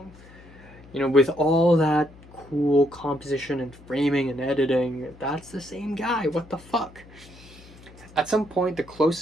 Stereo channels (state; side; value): noise; left; hum, 22 dB below the sound